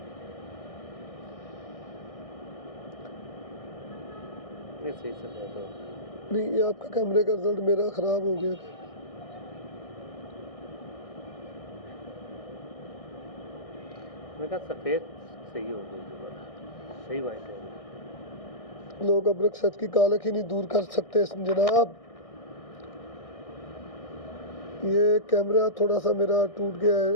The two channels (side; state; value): right; late; 1.6 ms